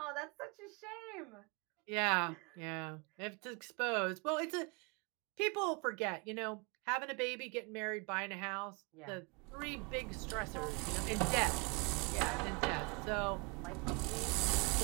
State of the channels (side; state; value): left; quieter; 31.2 dB